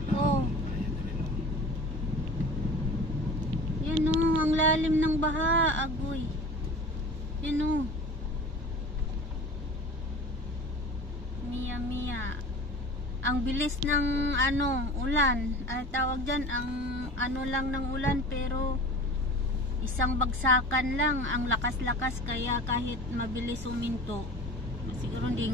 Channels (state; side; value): normal; both; correlation 0.39